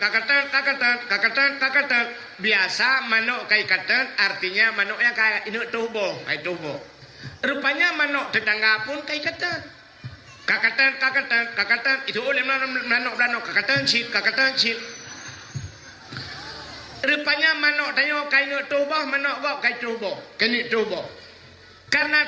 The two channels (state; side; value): identical; both; correlation 1.00